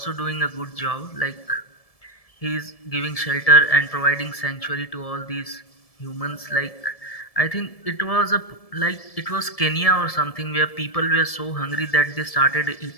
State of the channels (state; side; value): late; right; 1.7 ms